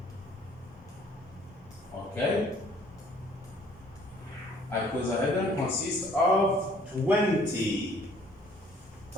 Okay? Icosahedron consists of 20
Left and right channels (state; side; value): normal; both; correlation 0.58